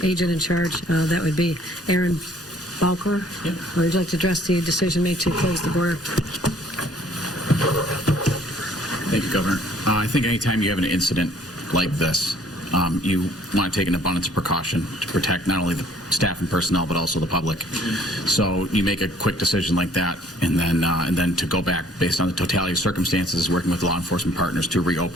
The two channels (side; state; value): both; normal; correlation 0.58